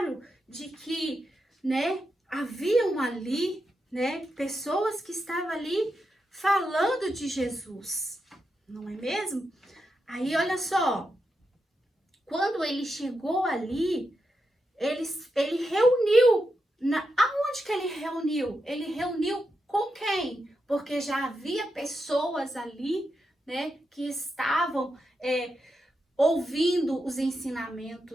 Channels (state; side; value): normal; both; correlation 0.86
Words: de que, né, haviam ali, né, pessoas que estavam ali falando de Jesus, não é mesmo? Aí, olha só, quando ele chegou ali, ele reuniu, aonde que ele reuniu? Ele reuniu com quem? Porque já havia pessoas ali, né, que estavam ouvindo os